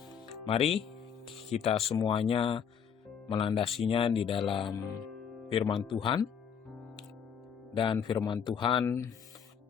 mari kita semuanya melandasinya di dalam firman Tuhan. Dan firman Tuhan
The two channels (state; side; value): quieter; right; 7.5 dB